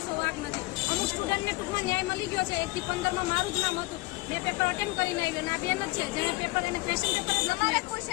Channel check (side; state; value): right; quieter; 21.9 dB